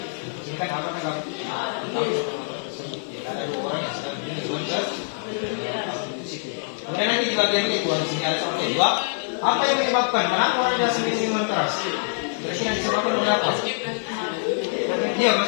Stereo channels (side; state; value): right; silent; 62 dB below the other